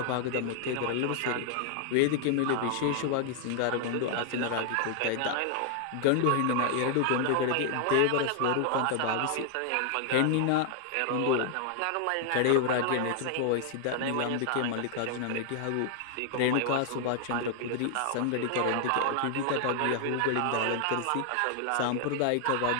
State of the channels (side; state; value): both; different; correlation 0.00